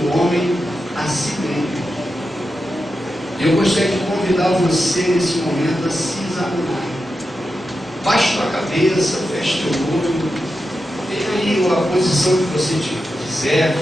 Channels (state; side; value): normal; both; correlation 0.89